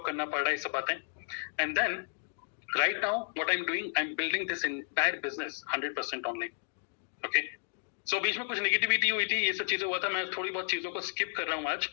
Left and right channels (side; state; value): right; silent; digital silence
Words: करना पड़ रहा है, ये सब बातें। And then right now what I am doing, I am building this entire business 100% online. Okay, so बीच में कुछ नेगेटिविटी हुई थी, ये सब चीजें हुआ था, मैं थोड़ी बहुत चीजों को स्किप कर रहा हूँ आज।